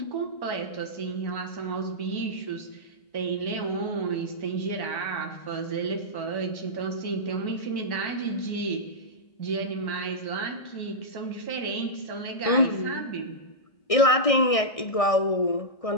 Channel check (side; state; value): right; late; 1.6 ms